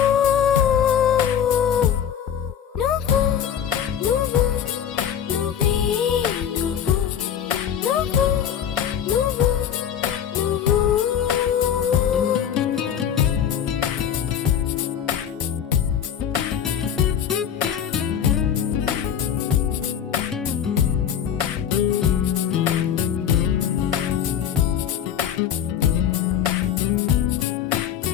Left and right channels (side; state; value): right; quieter; 9.0 dB